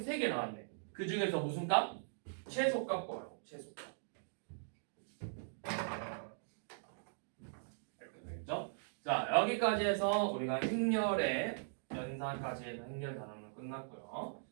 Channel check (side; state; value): left; silent; digital silence